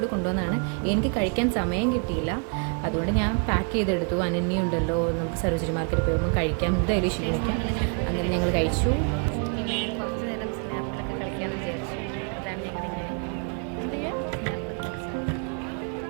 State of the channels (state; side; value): quieter; left; 39.2 dB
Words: കൂടി കൊണ്ടുവന്നതാണ്. എനിക്ക് കഴിക്കാൻ സമയം കിട്ടിയില്ല, അതുകൊണ്ട് ഞാൻ പാക്ക് ചെയ്തെടുത്തു. അനന്യുണ്ടല്ലോ, നമുക്ക് സരോജിനി മാർക്കറ്റിൽ പോകുമ്പോൾ കഴിക്കാം, എന്തായാലും ക്ഷീണിക്കാം. അങ്ങനെ ഞങ്ങൾ കഴിച്ചു. കുറച്ച് നേരം സ്നാപ്പിലൊക്കെ കളിക്കാമെന്ന് വിചാരിച്ചു. അതാണ് ഞങ്ങളിങ്ങനെ